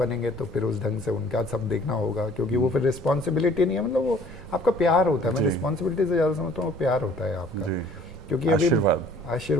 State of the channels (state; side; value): normal; both; correlation 0.54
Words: तो फिर उस ढंग से उनका सब देखना होगा, क्योंकि वो फिर रिस्पॉन्सिबिलिटी नहीं है, मतलब वो आपका प्यार होता है। मैं रिस्पॉन्सिबिलिटी से ज़्यादा समझता हूँ वो प्यार होता है आपका, क्योंकि अभी